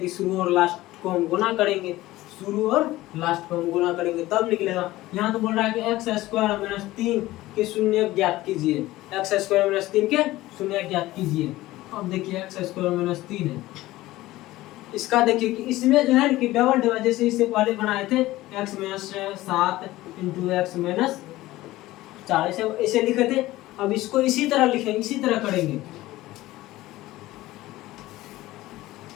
शुरू और लास्ट को हम गुना करेंगे, शुरू और लास्ट को हम गुना करेंगे तब निकलेगा। यहाँ तो बोल रहा है कि एक्स स्क्वायर माइनस 3 के शून्य ज्ञात कीजिए, एक्स स्क्वायर माइनस 3 के शून्य ज्ञात कीजिए। अब देखिए एक्स स्क्वायर माइनस 3 है, इसका देखिए कि इसमें जो है कि डबल डबल जैसे इससे पहले बनाए थे x minus 7 into x minus 4 ऐसे लिखे थे। अब इसको इसी तरह लिखेंगे, इसी तरह करेंगे,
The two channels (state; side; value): quieter; right; 17.2 dB